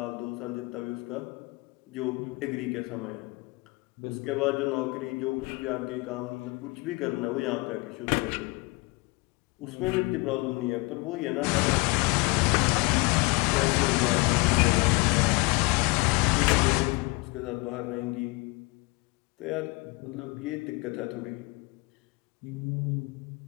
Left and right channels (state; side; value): quieter; right; 26.2 dB